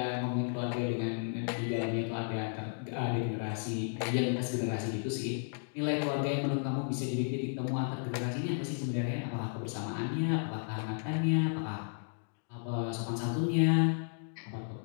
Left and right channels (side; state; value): right; silent; digital silence